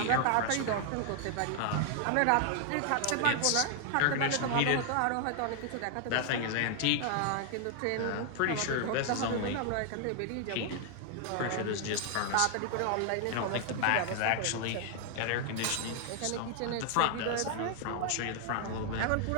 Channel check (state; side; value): different; both; correlation 0.00